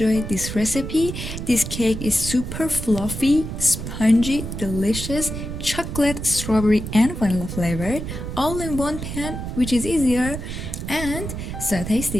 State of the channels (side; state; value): right; noise; rumble, 7 dB below the sound